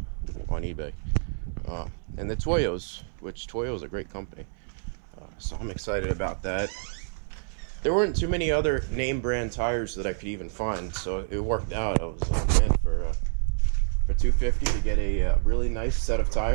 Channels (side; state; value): left; silent; 60 dB below the other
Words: on eBay. And the Toyos, which Toyo's a great company. So I'm excited about that. There weren't too many other name brand tires that I could even find, so it worked out. I was like, man, for $250 to get a really nice set of